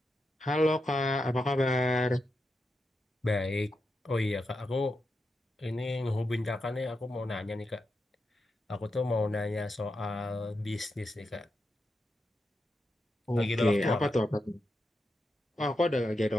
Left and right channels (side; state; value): both; normal; correlation 0.87